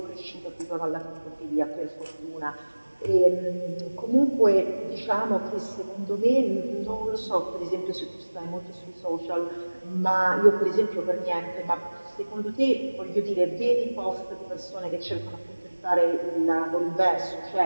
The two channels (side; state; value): both; inverted; correlation -1.00